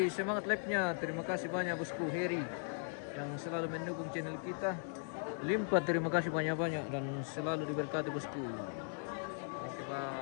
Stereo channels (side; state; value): right; silent; 52 dB below the other